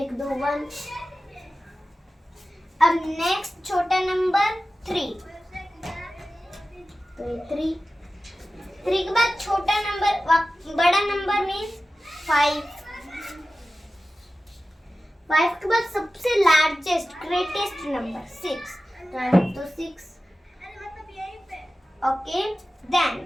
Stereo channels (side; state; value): both; normal; correlation 0.95